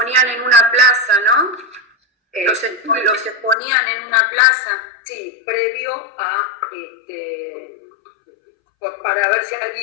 en una plaza, ¿no? Los exponían en una plaza. Sí, previo a, para ver si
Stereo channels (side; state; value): right; drops out; at 3.6 s